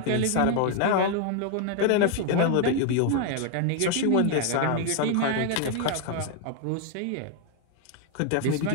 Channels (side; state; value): both; different; correlation 0.00